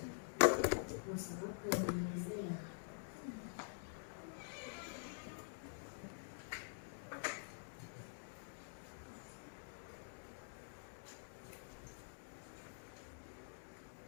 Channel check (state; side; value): silent; right; digital silence